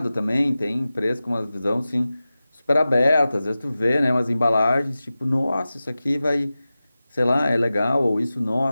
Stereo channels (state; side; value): inverted; both; correlation -0.95